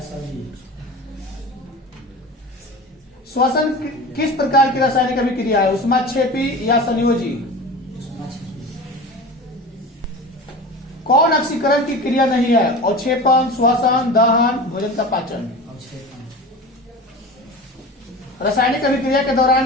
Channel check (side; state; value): both; normal; correlation 0.33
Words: श्वसन किस प्रकार की रासायनिक अभिक्रिया है? ऊष्माक्षेपी या संयोजी? कौन ऑक्सीकरण की क्रिया नहीं है? अवक्षेपण, श्वसन, दहन, भोजन का पाचन। रासायनिक अभिक्रिया के दौरान